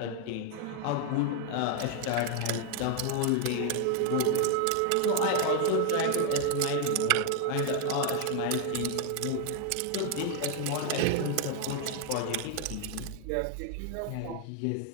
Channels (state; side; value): different; both; correlation 0.01